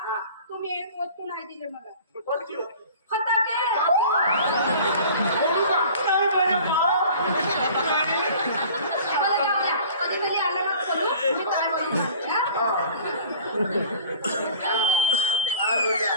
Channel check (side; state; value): both; inverted; correlation -0.45